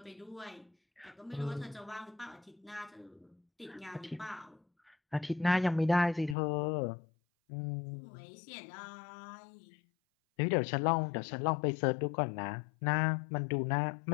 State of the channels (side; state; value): right; drops out; at 6.4 s